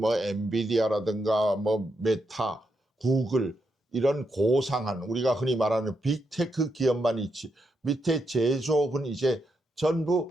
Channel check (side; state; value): both; normal; correlation 0.82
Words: 엔비디아라든가 뭐 메타, 구글 이런 고상한 우리가 흔히 말하는 빅테크 기업만 있지 밑에 제조업은 이제